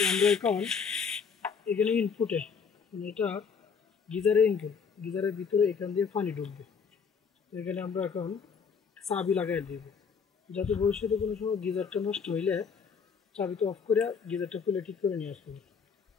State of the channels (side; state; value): right; quieter; 6.1 dB